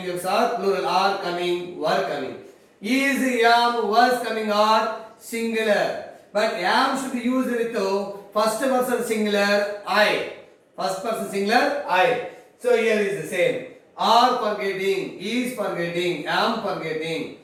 verbs are plural, are coming, were coming. Is, am, was coming are singular. But am should be used with first person singular I. First person singular I. So here is the same. Are forgetting, is forgetting, am forgetting.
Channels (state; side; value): identical; both; correlation 1.00